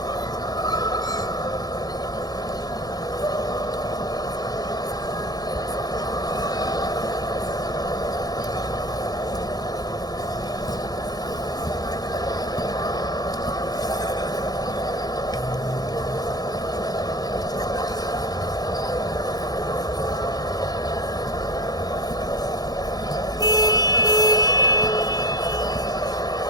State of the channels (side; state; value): both; normal; correlation 0.31